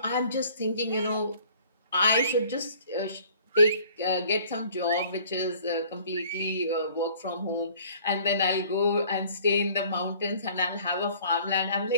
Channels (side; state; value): both; inverted; correlation -0.54